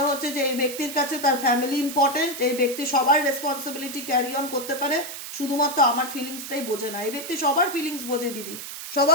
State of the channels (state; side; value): noise; right; hiss, 10 dB below the sound